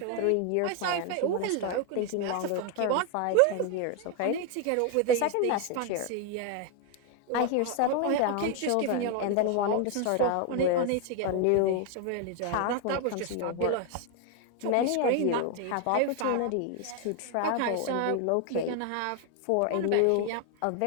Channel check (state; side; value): different; both; correlation 0.01